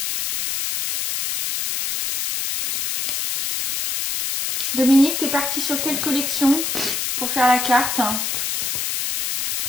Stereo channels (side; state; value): left; noise; hiss, 1 dB below the sound